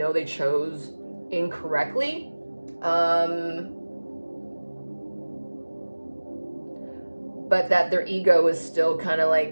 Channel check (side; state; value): both; inverted; correlation -1.00